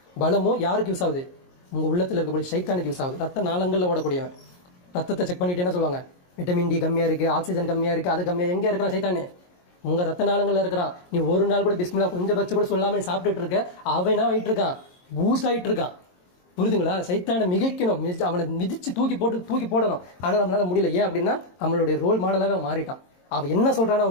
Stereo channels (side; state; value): right; late; 22 ms